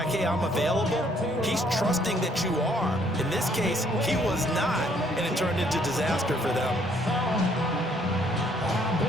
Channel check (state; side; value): normal; both; correlation 0.65